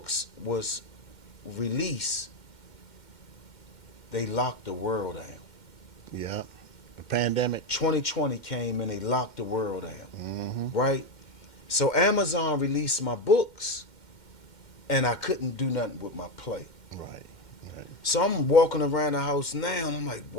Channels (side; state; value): right; late; 2.1 ms